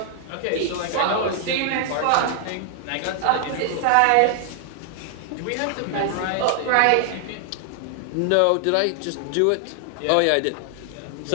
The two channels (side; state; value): both; different; correlation 0.00